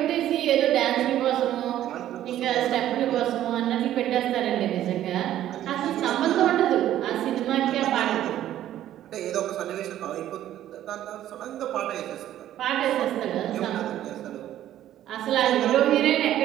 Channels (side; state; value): left; quieter; 12.3 dB